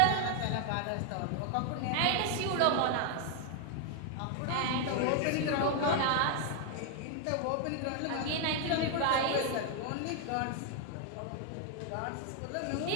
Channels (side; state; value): both; different; correlation 0.00